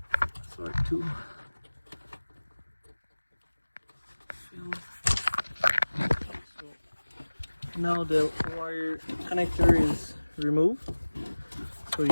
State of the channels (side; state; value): both; inverted; correlation -1.00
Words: tool. So now the wire connector is removed. So